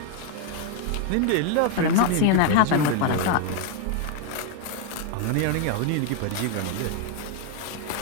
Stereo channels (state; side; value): different; both; correlation 0.01